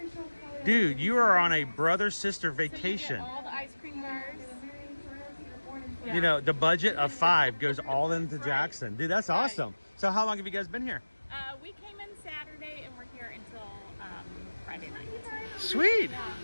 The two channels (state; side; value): inverted; both; correlation -1.00